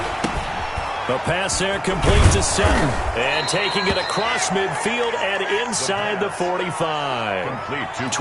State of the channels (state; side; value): identical; both; correlation 1.00